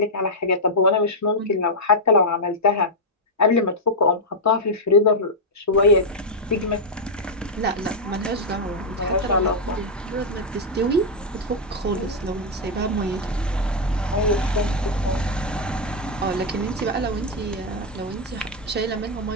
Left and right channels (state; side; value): normal; both; correlation -0.03